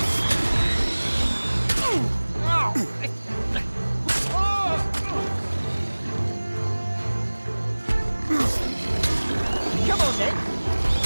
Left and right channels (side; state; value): both; inverted; correlation -1.00